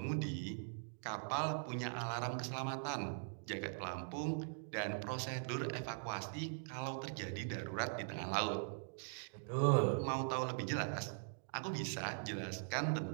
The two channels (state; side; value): silent; left; digital silence